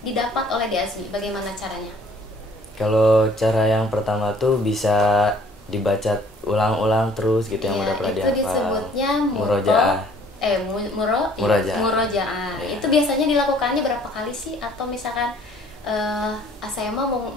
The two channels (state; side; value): normal; both; correlation 0.57